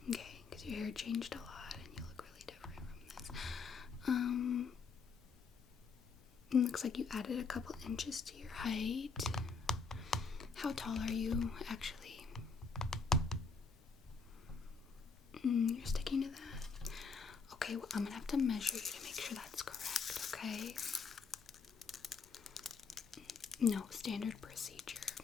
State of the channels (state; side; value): quieter; right; 5.0 dB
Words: Okay, because your hair changed a lot and you look really different from this. It looks like you added a couple inches to your height. How tall are you, actually? You're sticking to that? Okay, well, I'm gonna have to measure you to make sure that's correct, okay? No, standard procedure.